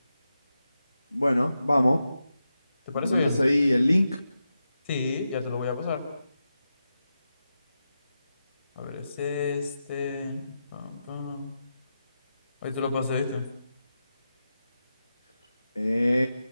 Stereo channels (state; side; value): inverted; both; correlation -0.89